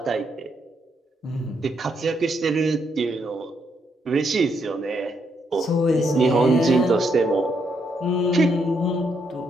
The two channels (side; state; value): both; normal; correlation 0.76